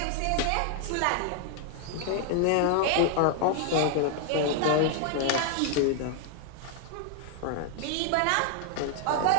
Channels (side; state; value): both; different; correlation 0.00